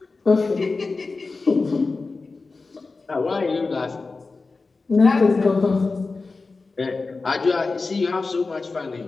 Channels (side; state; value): right; quieter; 3.9 dB